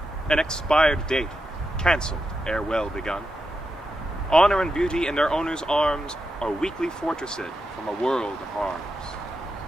an expired date, cancelled ere well begun. Honor and beauty in their owner's arms are weakly fortressed from a world of harms.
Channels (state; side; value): normal; both; correlation 0.87